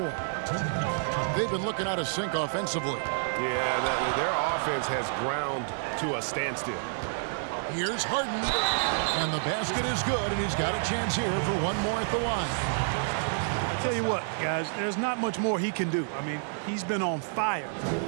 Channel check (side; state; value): left; silent; digital silence